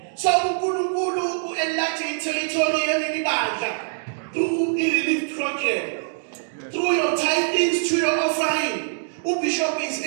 So uNkulunkulu u-enlarge territory yeleli bandla through i-relief youth program, through your tithings, through your offering, Bishop is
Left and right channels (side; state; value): left; silent; digital silence